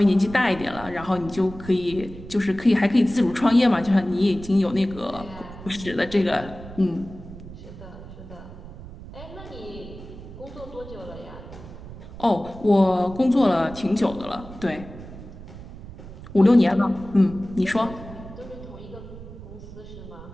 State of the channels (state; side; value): noise; right; rumble, 14 dB below the sound